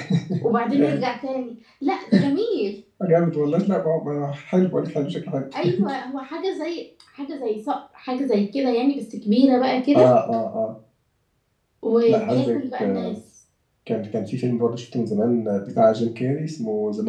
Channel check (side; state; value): both; identical; correlation 1.00